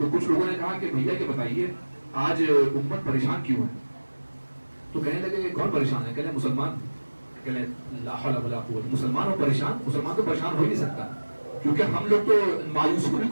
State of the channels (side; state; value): both; inverted; correlation -1.00